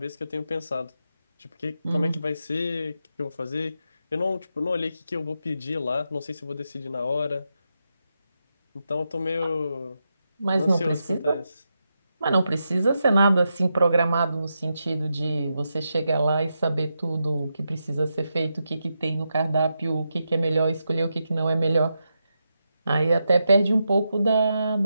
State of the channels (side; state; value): both; inverted; correlation -0.86